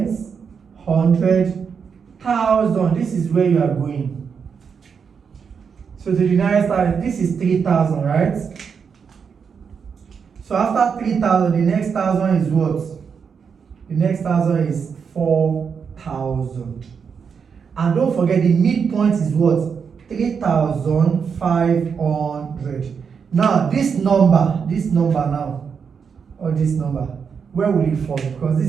100, 1,000. This is where you are going. So to the nearest thousand, this is 3,000, right? So after 3,000, the next thousand is what? The next thousand is 4,000. And don't forget, the midpoint is what? 3,500. Now this number now, or this number, where will it fall? Because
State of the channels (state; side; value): quieter; left; 6.3 dB